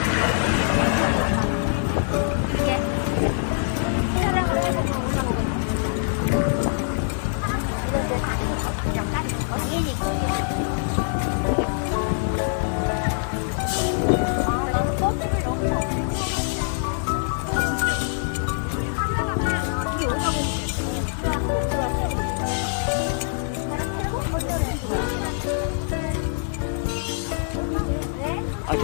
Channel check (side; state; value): right; silent; digital silence